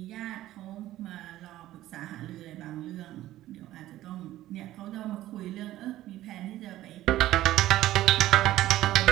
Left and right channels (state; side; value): quieter; left; 14.7 dB